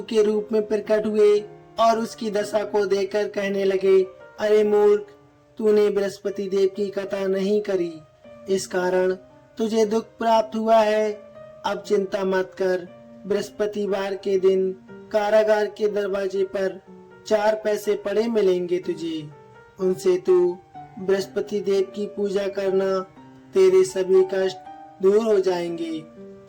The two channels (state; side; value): identical; both; correlation 1.00